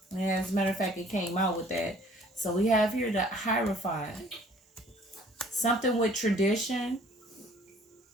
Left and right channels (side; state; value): both; normal; correlation 0.55